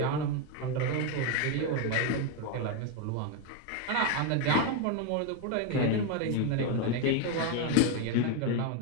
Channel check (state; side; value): different; both; correlation 0.02